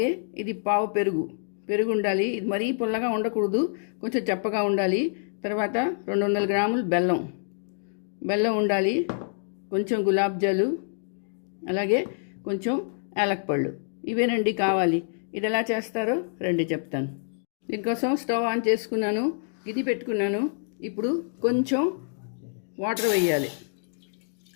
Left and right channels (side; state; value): right; silent; digital silence